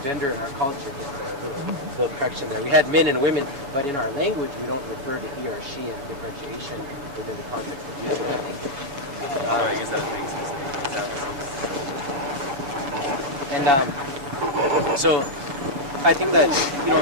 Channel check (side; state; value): left; late; 7.2 ms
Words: gender in our culture, just a little correction there. We had men and women, but in our language we don't refer to he or she and differentiation within the context of using that language. I guess that was being specific. So I think that, you